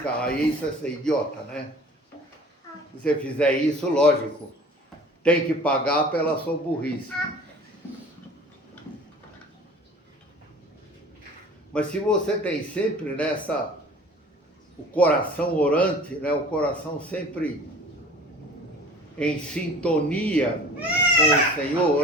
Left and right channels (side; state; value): both; normal; correlation 0.45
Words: Aí isso é ser idiota, né? Se você fizer isso, lógico, tem que pagar pela sua burrice. Mas se você tem sempre o coração orante, né, o coração sempre em sintonia